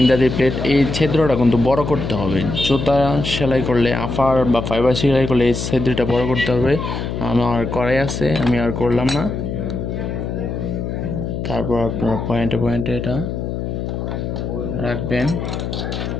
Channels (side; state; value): left; noise; hum, 4 dB below the sound